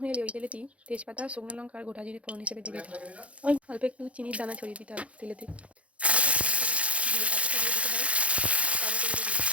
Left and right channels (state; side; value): late; left; 0.063 ms